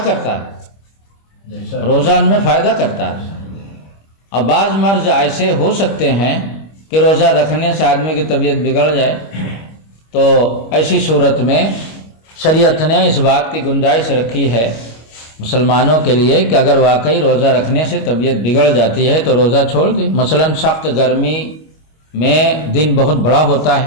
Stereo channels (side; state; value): right; late; 25 ms